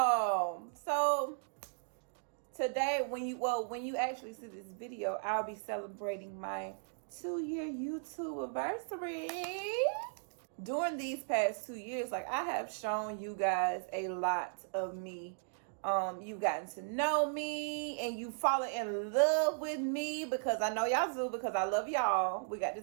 today when you actually see this video, I'll be celebrating my 2-year YouTube anniversary. During these past 2 years, like, I have shown you guys a lot of me. You've gotten to know me and you fallen in love with me because I know y'all do, because I love y'all. We got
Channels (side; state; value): left; silent; digital silence